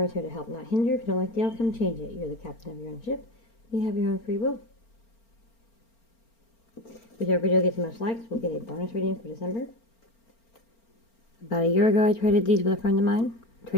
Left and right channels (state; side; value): late; right; 4.4 ms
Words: here to help, not hinder. If you don't like the outcome, change it. You're the captain of your own ship. You have your own free will. Whichever video gets the most likes, we'll get a bonus reading for December. About a year ago, I traded these with a friend of mine.